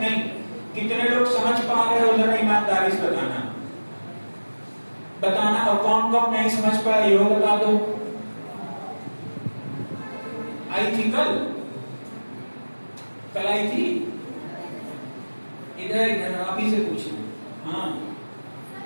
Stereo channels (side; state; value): both; inverted; correlation -1.00